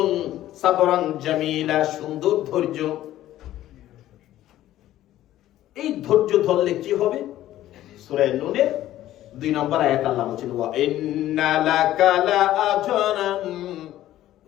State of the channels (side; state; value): right; quieter; 13.7 dB